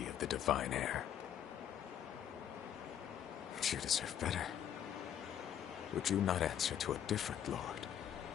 of the Divine Heir. But you deserve better. Would you not answer to a different lord?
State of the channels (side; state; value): right; quieter; 9.7 dB